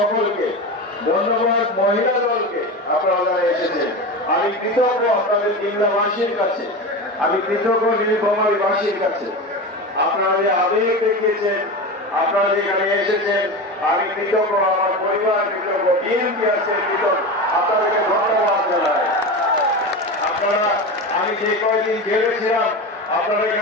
ধন্যবাদ মহিলা দলকে, আপনারা যারা এসেছেন। আমি কৃতজ্ঞ আপনাদের কিংলাবাসীর কাছে, আমি কৃতজ্ঞ নীলফামারীবাসীর কাছে। আপনারা যে আবেগ দেখিয়েছেন, আপনারা যেখানে এসেছেন, আমি কৃতজ্ঞ, আমার পরিবার কৃতজ্ঞ, বিএনপি আছে কৃতজ্ঞ, আপনাদেরকে ধন্যবাদ জানাই। আপনারা, আমি যে কয়েকদিন জেলে ছিলাম, আপনারা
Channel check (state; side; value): normal; both; correlation 0.24